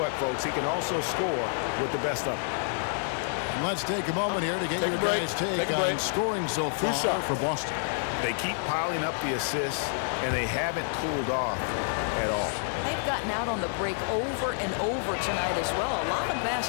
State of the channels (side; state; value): right; silent; 59 dB below the other